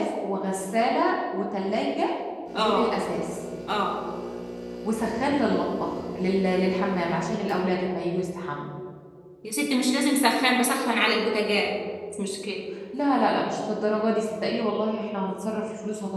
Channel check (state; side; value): identical; both; correlation 1.00